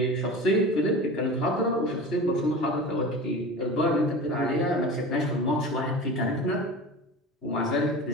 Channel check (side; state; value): both; normal; correlation 0.33